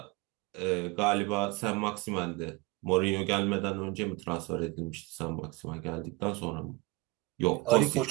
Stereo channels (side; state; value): left; quieter; 21.7 dB